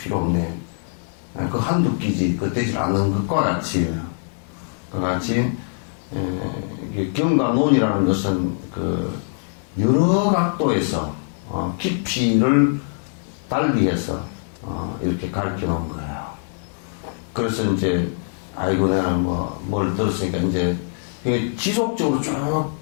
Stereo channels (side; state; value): right; silent; digital silence